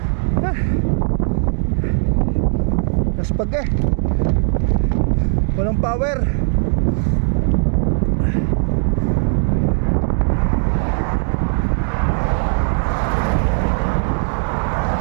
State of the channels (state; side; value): silent; left; 57 dB below the other